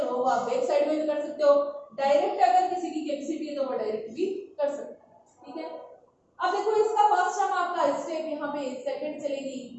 आप बैक साइड में भी कर सकते हो डायरेक्ट अगर किसी की कैपेसिटी है तो वो डायरेक्ट भी कर सकते हैं ठीक है। अब देखो इसका फर्स्ट टर्म आपका स्टेप यहाँ पे सेकंड चलेगी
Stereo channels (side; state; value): both; identical; correlation 1.00